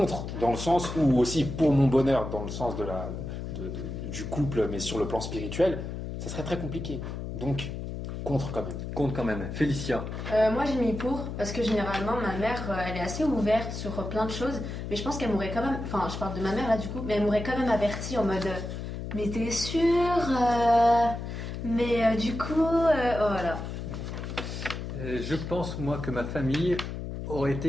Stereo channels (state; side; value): noise; left; hum, 6 dB below the sound